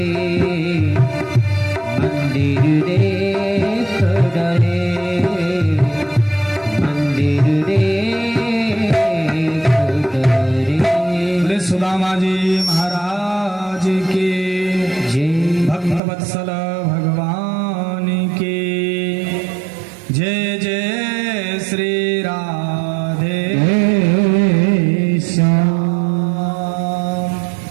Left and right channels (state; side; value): drops out; left; at 16.0 s